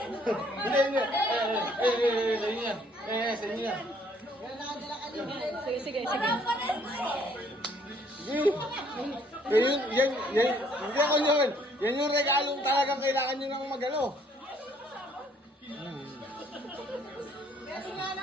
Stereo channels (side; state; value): both; normal; correlation 0.63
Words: Hindi, hindi. Sa inyo yan. Sa inyo yan. Sige, sige, sige. Sige. Hindi ako yun. Yan yung regalong talagang kailangan nyo nang magalo.